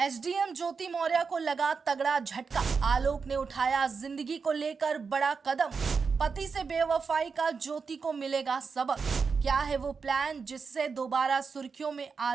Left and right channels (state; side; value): quieter; left; 5.3 dB